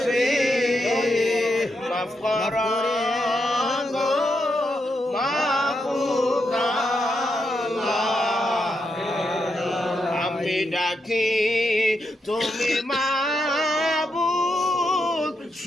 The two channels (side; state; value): both; normal; correlation 0.82